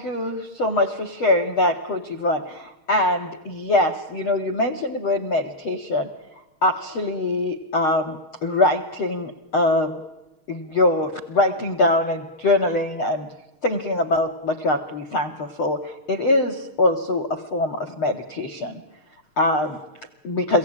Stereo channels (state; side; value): late; right; 6.5 ms